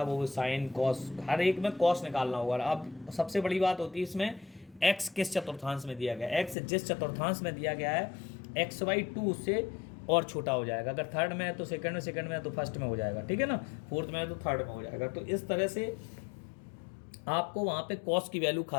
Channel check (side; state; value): right; drops out; at 6.6 s